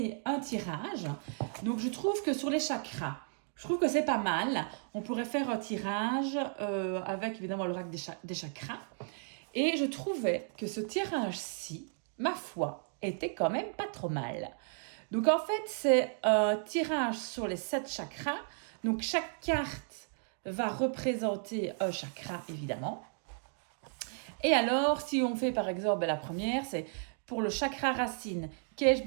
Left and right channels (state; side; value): silent; left; 55 dB below the other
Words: un tirage. Donc je trouve que sur les chakras, je trouve que c'est pas mal. On pourrait faire un tirage avec évidemment l'oracle des chakras. Et je trouvais que ce tirage-ci, ma foi, était quand même pas trop mal. Donc en fait, c'est un tirage sur les 7 chakras. Donc chaque carte va représenter un chakra, évidemment. Et alors, si on fait par exemple la première, c'est pour le chakra racine, qu'ai-je